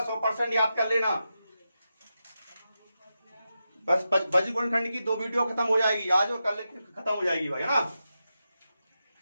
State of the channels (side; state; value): both; inverted; correlation -0.89